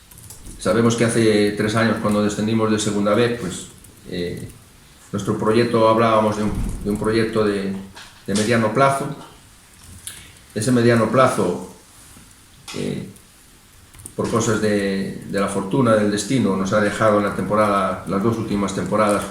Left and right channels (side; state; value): both; identical; correlation 1.00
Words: Sabemos que hace 3 años, cuando descendimos de Segunda B, pues nuestro proyecto, hablábamos de un proyecto de mediano plazo. Ese mediano plazo, por cosas de la fortuna, del destino, nos ha dejado en la temporada, las 2 últimas temporadas